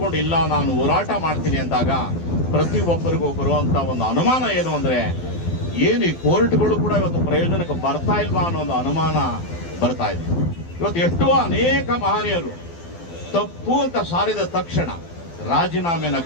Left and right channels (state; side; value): late; right; 12 ms